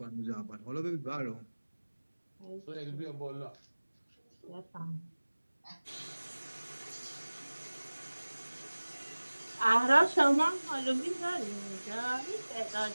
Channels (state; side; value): inverted; both; correlation -1.00